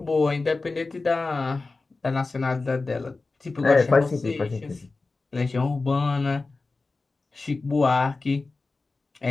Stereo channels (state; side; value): quieter; right; 3.7 dB